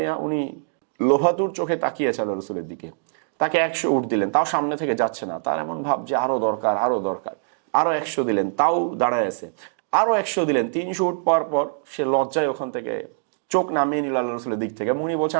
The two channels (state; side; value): silent; left; digital silence